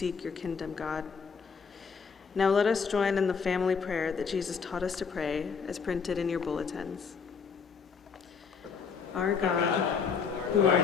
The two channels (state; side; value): quieter; right; 5.9 dB